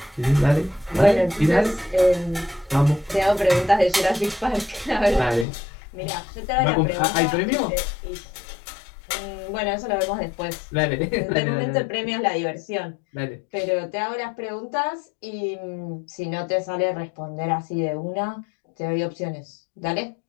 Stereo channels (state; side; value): drops out; right; at 5.5 s